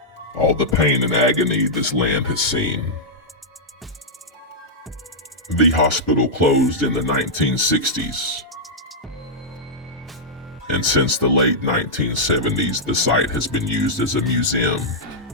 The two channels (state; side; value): normal; both; correlation -0.08